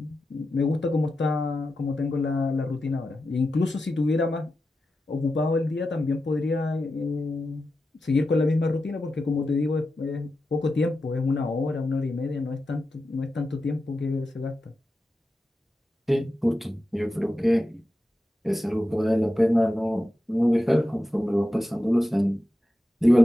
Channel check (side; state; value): both; normal; correlation 0.91